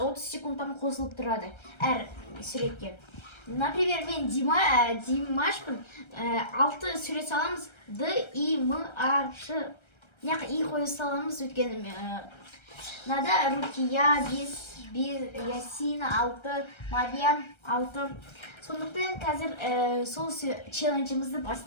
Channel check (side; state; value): right; late; 1.3 ms